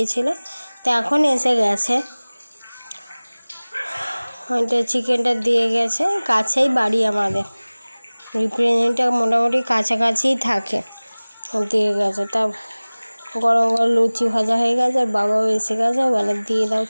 তো এখন এসে গেছে। ওইটা চিকেনটা দিয়ে গেছে, কাছেই বাড়ি আমাদের, রিপ্রেজেন্টেটিভ মোটামুটি কাছাকাছিই থাকে, দিয়ে গেছে। তা গরম গরম লুচি ভাজা হয়ে গেছে, আর বাবাও এসে গেছে, বলে দিয়ে দাও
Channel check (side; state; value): both; inverted; correlation -1.00